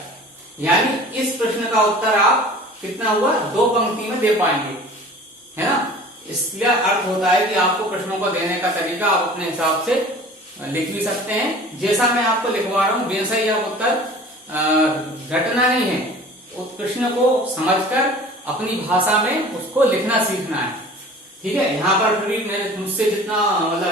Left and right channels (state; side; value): normal; both; correlation 0.43